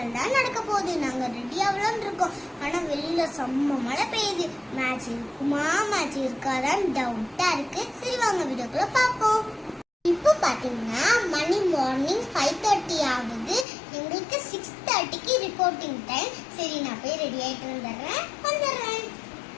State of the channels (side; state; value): right; drops out; at 13.7 s